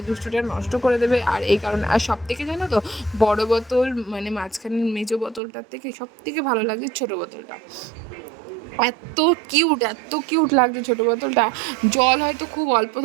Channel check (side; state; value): left; drops out; at 5.4 s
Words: দুষ্টুটা নষ্ট করে দেবে। আর এই কারণে, আর সব থেকে জানো তো, বড় বোতল মানে মাঝখানের মেজো বোতলটার থেকে সব থেকে ভালো লাগে ছোটো বোতলটা। এত কিউট লাগছে ছোটো বোতলটা। জল হয়তো খুব অল্প